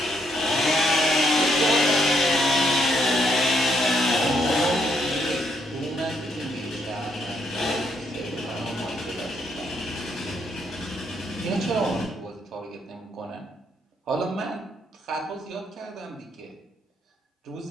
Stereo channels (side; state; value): both; normal; correlation 0.73